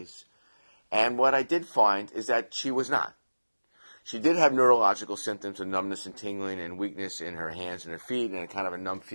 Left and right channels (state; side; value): inverted; both; correlation -1.00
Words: And what I did find is that she was not. She did have neurological symptoms of numbness and tingling and weakness in her hands and her feet and kind of a numb